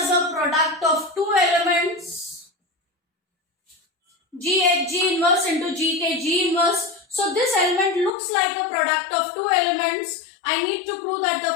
a product of two elements, G inverse into G inverse. So this element looks like a product of two elements. I need to prove that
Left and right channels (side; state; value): right; drops out; at 8.1 s